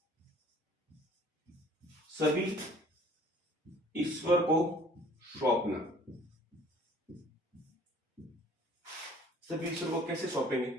सभी ईश्वर को सौंपना। सभी ईश्वर को कैसे सौंपेंगे,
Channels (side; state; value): both; normal; correlation 0.53